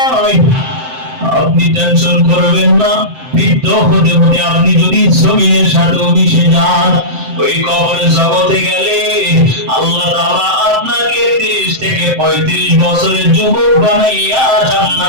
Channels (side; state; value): left; late; 7.7 ms